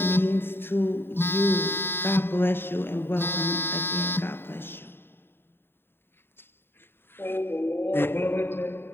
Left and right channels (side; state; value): right; late; 0.11 ms